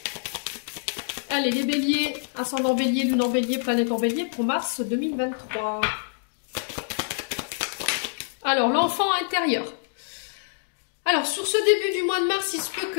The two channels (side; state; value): right; silent; digital silence